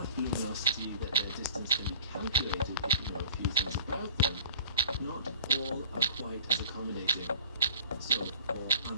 luminosity that their distance can be calculated if you know a few things about them, not all are quite as accommodating. So, for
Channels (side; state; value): both; inverted; correlation -0.48